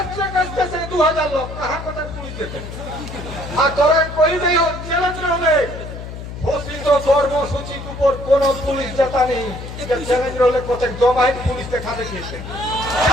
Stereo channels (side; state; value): left; noise; hum, 10 dB below the sound